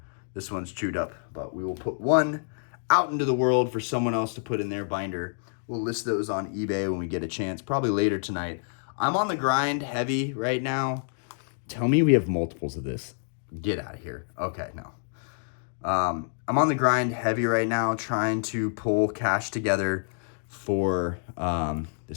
This one's chewed up. But we will put one out into the world for someone else to put in their binder. We'll list those on eBay when we get a chance. Probably later tonight. I'm on the grind heavy right now. Tell me we have multiples of this. Get out of here. Okay, no. I'm on the grind heavy right now, trying to pull cash together for the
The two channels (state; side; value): silent; right; digital silence